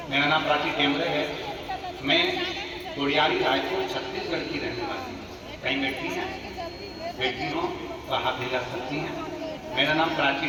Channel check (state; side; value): identical; both; correlation 1.00